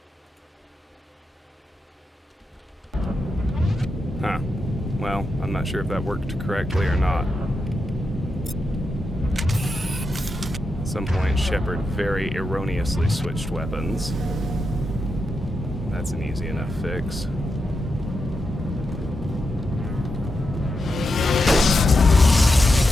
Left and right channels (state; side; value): normal; both; correlation 0.87